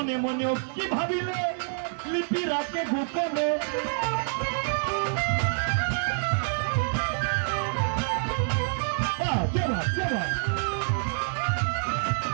মনে কি ভাবিলে লিপি রাখে গোপনে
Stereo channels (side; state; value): left; silent; 60 dB below the other